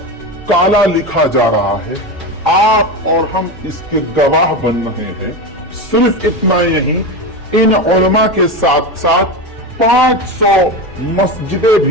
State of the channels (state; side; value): normal; both; correlation 0.20